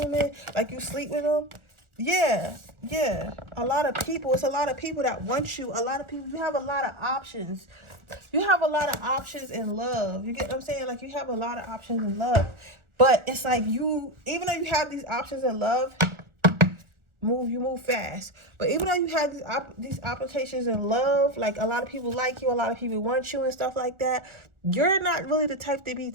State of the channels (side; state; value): left; late; 1.4 ms